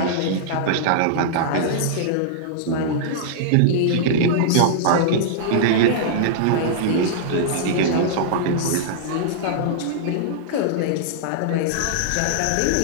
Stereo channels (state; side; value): different; both; correlation -0.02